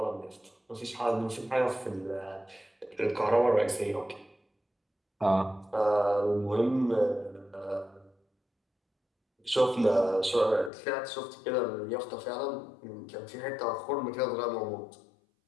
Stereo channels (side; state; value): right; drops out; at 10.7 s